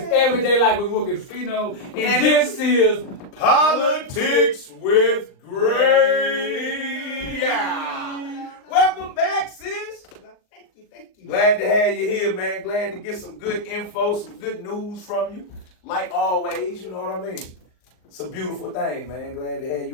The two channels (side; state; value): right; late; 39 ms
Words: Everyday Life with Wilkins Fino, and this is Politics with Grei. Yeah. Welcome back, sis. Thank you. Glad to have you here, man. Glad to get some good info, some good news from you. Like always, you know what I mean? It's a beautiful thing, man. Glad to have